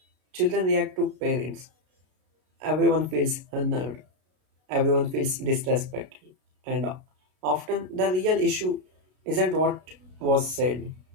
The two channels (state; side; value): late; left; 33 ms